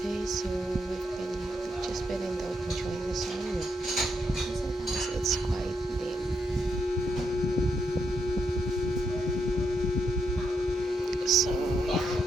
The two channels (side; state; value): both; normal; correlation 0.80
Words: so we've just been enjoying the sun. Sometimes it's quite dim, so yeah.